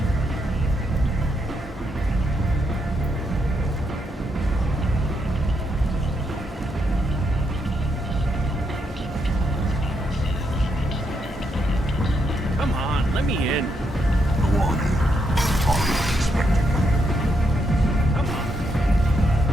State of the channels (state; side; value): normal; both; correlation 0.79